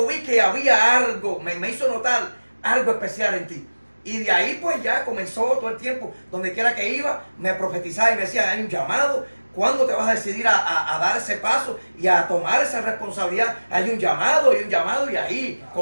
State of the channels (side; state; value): both; inverted; correlation -1.00